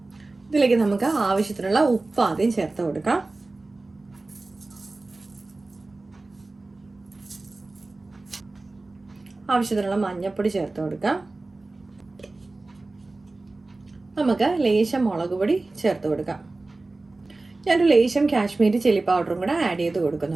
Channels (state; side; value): quieter; left; 3.2 dB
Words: ഇതിലേക്ക് നമുക്ക് ആവശ്യത്തിനുള്ള ഉപ്പ് ആദ്യം ചേർത്ത് കൊടുക്കാം. ആവശ്യത്തിനുള്ള മഞ്ഞൾപ്പൊടി ചേർത്ത് കൊടുക്കാം. നമുക്ക് ലേശം മുളക് പൊടി ചേർത്ത് കൊടുക്കാം. ഞാനൊരു ലേശം കാശ്മീരി ചില്ലി പൗഡറും കൂടെ ആഡ് ചെയ്ത്